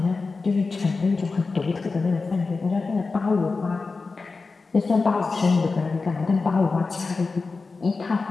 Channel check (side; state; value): right; quieter; 4.1 dB